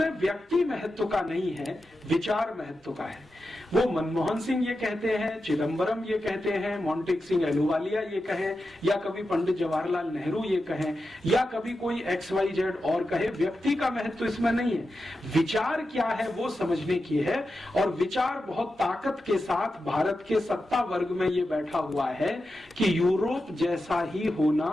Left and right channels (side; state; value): both; normal; correlation 0.90